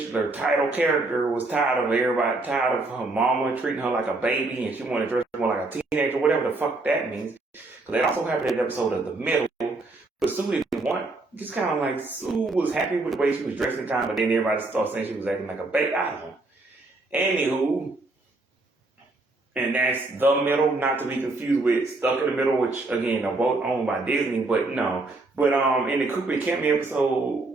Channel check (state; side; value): quieter; left; 3.1 dB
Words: title character, was tired of her mama treating her like a baby, and she wanted to dress more like a teenager, whatever the fuck that means. So that also happened in the episode of The Middle. But Sue didn't want, just kind of like, Sue was happy with the way she was dressing, but then everybody started saying she was acting like a baby. I don't know. Anywho, and that's The Middle, not to be confused with Stuck in the Middle, which, again, are both owned by Disney, but no. But in the Cooper Campbell